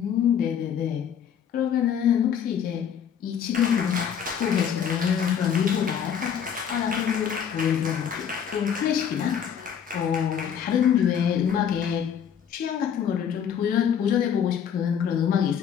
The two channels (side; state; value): right; quieter; 8.2 dB